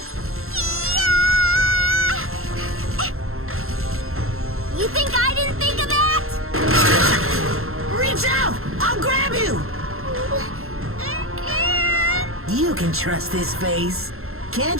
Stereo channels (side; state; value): left; late; 0.62 ms